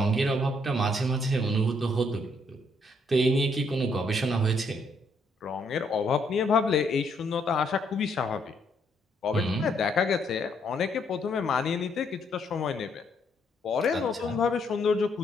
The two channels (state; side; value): normal; both; correlation 0.71